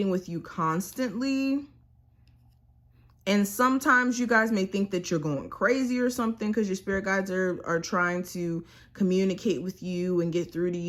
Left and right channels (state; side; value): identical; both; correlation 1.00